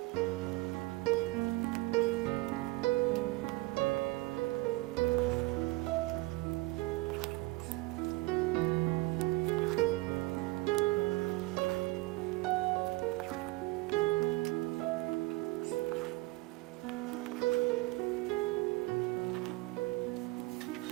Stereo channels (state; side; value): quieter; left; 21.8 dB